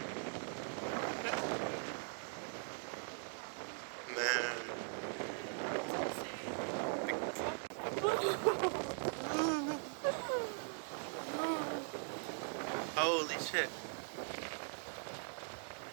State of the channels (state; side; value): silent; left; 50 dB below the other